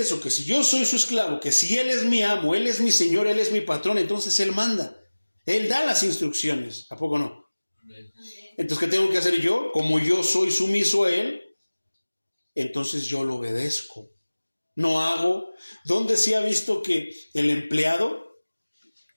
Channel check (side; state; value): both; inverted; correlation -1.00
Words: Que si yo soy su esclavo, que si Él es mi amo, Él es mi Señor, Él es mi patrón, entonces Él manda. Él da las instrucciones. ¿A poco no? Entonces, ¿qué tengo que hacer yo? Como yo soy sumiso a Él, entonces yo lo obedezco. No hago. ¿Dónde se ha visto que el empleado